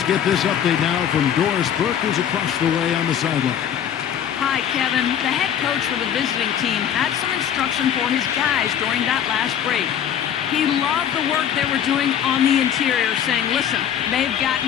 get this update now from Doris Burke, who's across the way on the sideline. Hi, Kevin. The head coach for the visiting team had some instruction for his guys during that last break. He loved the work they were doing on the interior, saying, listen, they've got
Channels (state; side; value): quieter; right; 9.3 dB